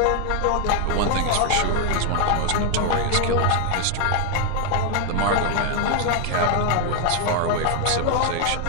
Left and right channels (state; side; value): different; both; correlation 0.00